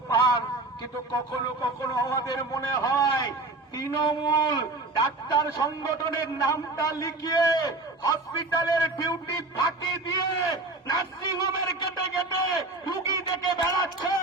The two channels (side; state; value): left; quieter; 3.1 dB